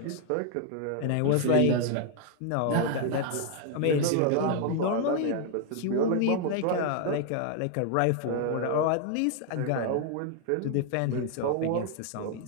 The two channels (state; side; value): different; both; correlation 0.00